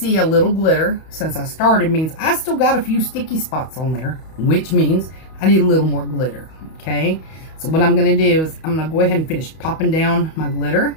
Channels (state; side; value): late; right; 31 ms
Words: a little glitter since I started means I still got a few sticky spots on there, which means I need a little more glitter, okay? So what I'm going to do is I'm going to go ahead and finish popping down my glitter